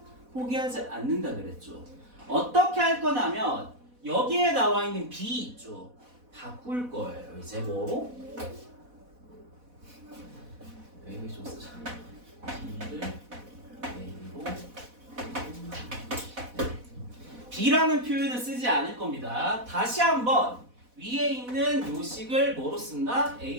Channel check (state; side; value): late; left; 4.1 ms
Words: 포기하지 않는다 그랬죠. 어떻게 할 거냐면 여기에 나와 있는 b 있죠. 바꿀 거예요. 이제 뭐로? 여기 좀 쓰자. b를 a로. b라는 표현을 쓰지 않을 겁니다. 다시 한번 위에 있는 요식을 뭐로 쓴다?